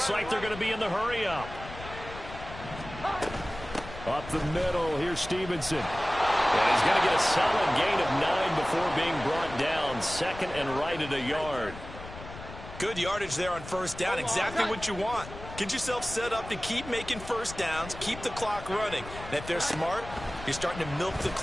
like they're going to be in the hurry-up. Up the middle, here's Stevenson. And he's going to get a solid gain of 9 before being brought down. 2nd and right at a yard. Good yardage there on 1st down. Exactly what you want. Get yourself set up to keep making 1st downs, keep the clock running. And if they're smart, you're starting to milk the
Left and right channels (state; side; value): noise; left; rumble, 13 dB below the sound